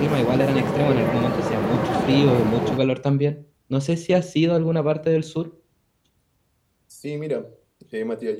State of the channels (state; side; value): identical; both; correlation 1.00